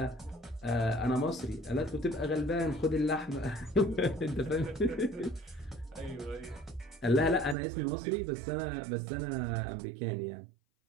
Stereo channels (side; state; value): left; drops out; at 7.6 s